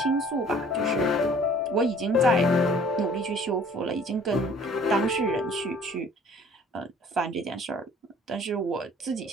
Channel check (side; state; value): both; normal; correlation 0.53